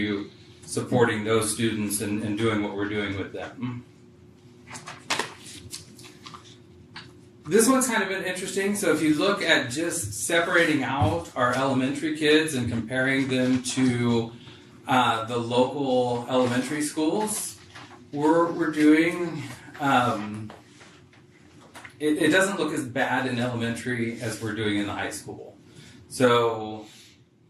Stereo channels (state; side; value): identical; both; correlation 1.00